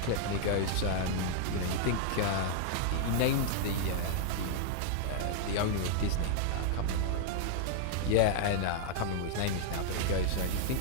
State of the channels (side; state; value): both; different; correlation -0.01